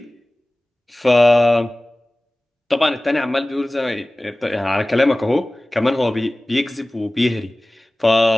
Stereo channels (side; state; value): both; normal; correlation 0.98